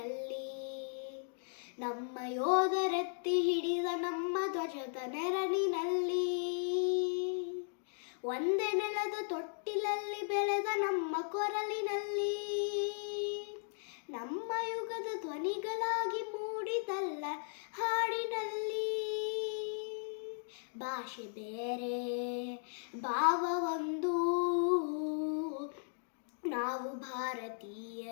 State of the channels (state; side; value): silent; right; digital silence